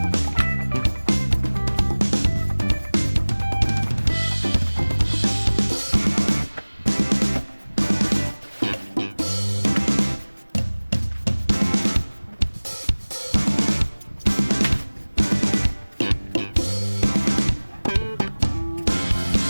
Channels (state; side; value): inverted; both; correlation -1.00